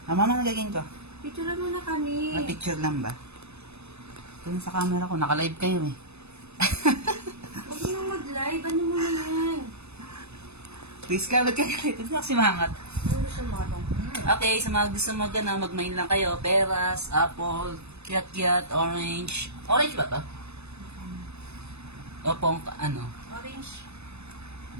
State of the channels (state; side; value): late; left; 0.80 ms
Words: Mama, nagaging ko? Picture mo na kami. Picture lang ba? Ito sa camera ko. Naka-live kayo eh. Huwag mo nang mag-live. Ano mo na yan? Please ka, ba't ka galit? Ito kasi mangat. Ano gusto mo ka dong? Okay, sa mga gusto mag-mine lang kayo. Peras, apple, kiat-kiat, orange. Orange ba to? O pong, ano? Orange.